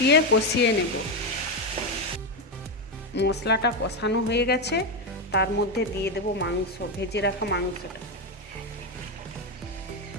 কষিয়ে নেব। মশলাটা কষানো হয়ে গেছে, তার মধ্যে দিয়ে দেব মাংস, ভেজে রাখা মাংসটা।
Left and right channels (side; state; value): both; normal; correlation 0.09